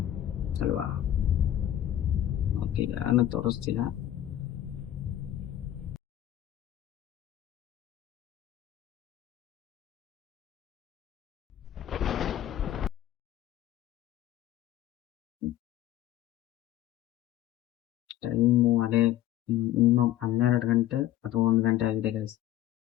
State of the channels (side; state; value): right; quieter; 12.6 dB